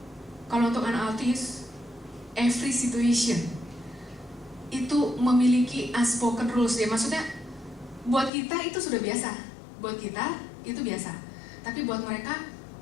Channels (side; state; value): right; drops out; at 8.3 s